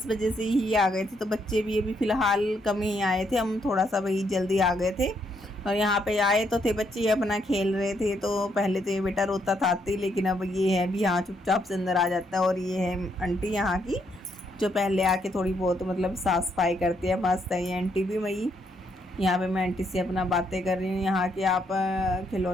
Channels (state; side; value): normal; both; correlation 0.75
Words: से ही आ गए थे, तो बच्चे भी अभी फ़िलहाल कम ही आए थे, हम थोड़ा सा भाई जल्दी आ गए थे। और यहाँ पे आए तो थे बच्चे अपना खेल रहे थे, तो पहले तो ये बेटा रोता था आते ही, लेकिन अब ये है भी यहाँ चुपचाप से अंदर आ जाता है। और ये है आंटी यहाँ की, जो पहले आके थोड़ी बहुत मतलब साफ़ सफाई करती है, मस्त है ये आंटी भी। वही यहाँ पे मैं आंटी से अपना बातें कर रही हूँ। यहाँ के आप